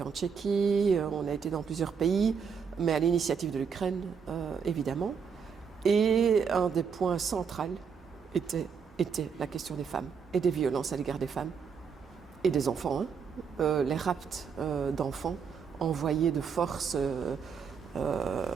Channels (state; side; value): quieter; left; 6.4 dB